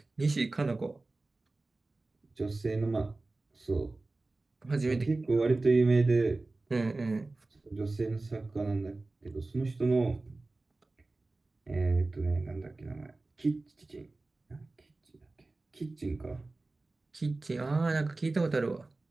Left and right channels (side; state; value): left; quieter; 3.2 dB